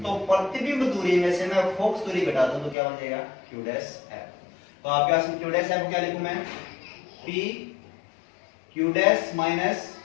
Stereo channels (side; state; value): right; drops out; at 2.8 s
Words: तो प्रतिबिंब दूरी में से मैं फोकस दूरी घटा दूं तो क्या बन जाएगा, Q डैश F। तो आपके पास में Q डैश F क्या लिखूं मैं, PQ डैश माइनस